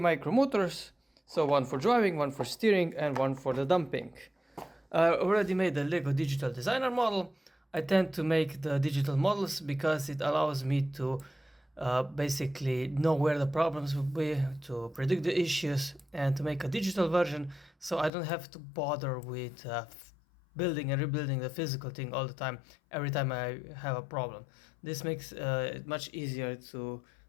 so one for driving, one for steering and one for the dumping. I already made a Lego digital designer model. I tend to make the digital models because it allows me to basically know where the problems will be, to predict the issues, and to make a digital version so I don't have to bother with building and rebuilding the physical thing all the time every time I have a problem. This makes it much easier to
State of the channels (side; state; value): right; drops out; at 18.1 s